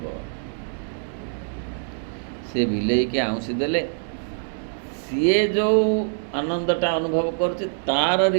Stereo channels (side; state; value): left; silent; digital silence